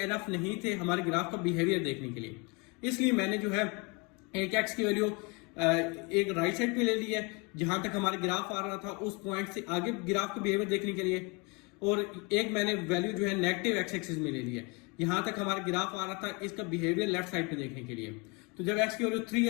नहीं थे हमारे ग्राफ का बिहेवियर देखने के लिए, इसलिए मैंने जो है एक x की वैल्यू एक राइट साइड पे ले ली है जहां तक हमारे ग्राफ आ रहा था उस पॉइंट से आगे ग्राफ का बिहेवियर देखने के लिए, और एक मैंने वैल्यू जो है नेगेटिव एक्स एक्सिस में ले ली है यहां तक हमारा ग्राफ आ रहा था इसका बिहेवियर लेफ्ट साइड पे देखने के लिए। तो जब x की वैल्यू 3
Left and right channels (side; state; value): right; quieter; 29.6 dB